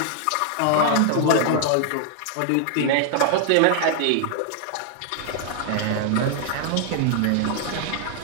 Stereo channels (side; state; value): both; different; correlation 0.00